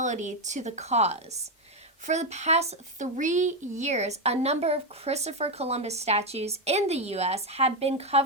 to the cause. For the past 3 years, a number of Christopher Columbus statues in the U.S. have been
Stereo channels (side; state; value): both; normal; correlation 0.07